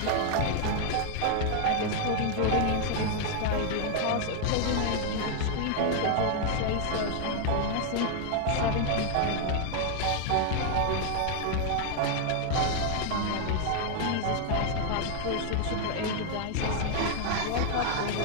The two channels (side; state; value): both; different; correlation 0.00